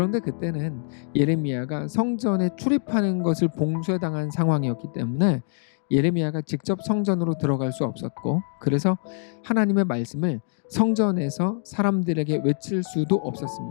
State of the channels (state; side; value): silent; right; 62 dB below the other